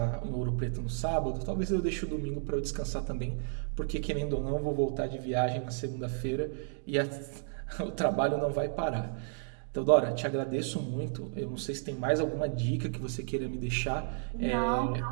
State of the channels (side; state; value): left; silent; digital silence